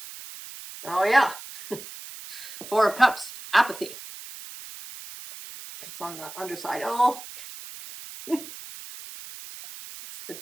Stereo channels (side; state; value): right; noise; hiss, 13 dB below the sound